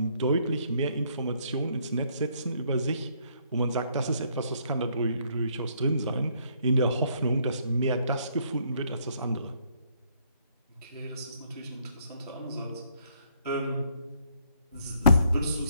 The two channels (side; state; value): both; inverted; correlation -0.69